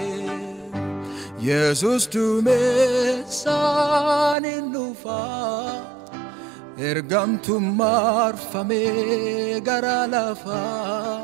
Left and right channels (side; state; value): left; drops out; at 4.4 s